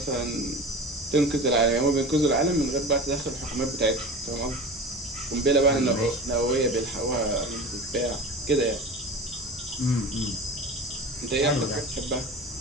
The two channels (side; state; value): both; normal; correlation 0.34